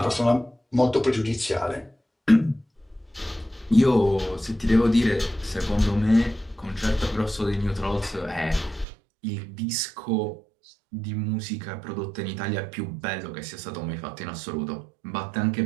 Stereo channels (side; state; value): left; drops out; at 8.8 s